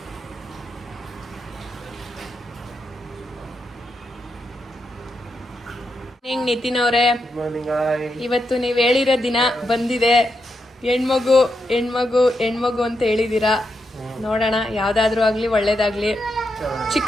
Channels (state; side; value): normal; both; correlation 0.84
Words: ನಿತಿನ್ ಅವರೇ, ಇವತ್ತು ನೀವ್ ಹೇಳಿರೋ ದಿನ ಬಂದಿದೆ. ಹೆಣ್ಮಗು ಹೆಣ್ಮಗು ಹೆಣ್ಮಗು ಅಂತ ಹೇಳಿದೀರಾ. ನೋಡೋಣ, ಯಾವ್ದಾದ್ರು ಆಗ್ಲಿ ಒಳ್ಳೇದಾಗ್ಲಿ.